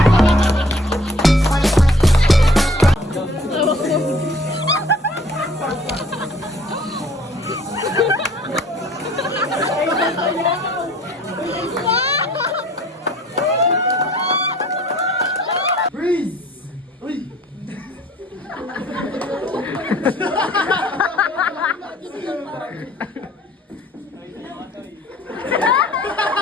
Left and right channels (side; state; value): both; normal; correlation 0.54